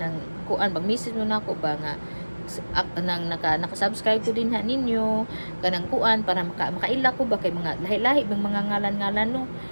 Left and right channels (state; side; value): inverted; both; correlation -1.00